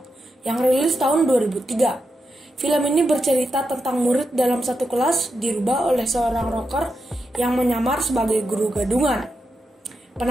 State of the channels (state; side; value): normal; both; correlation 0.86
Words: yang rilis tahun 2003. Film ini bercerita tentang murid dalam satu kelas dirubah oleh seorang rocker yang menyamar sebagai guru gadungan.